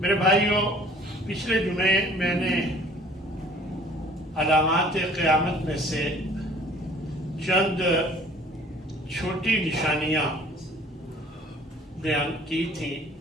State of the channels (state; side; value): normal; both; correlation 0.52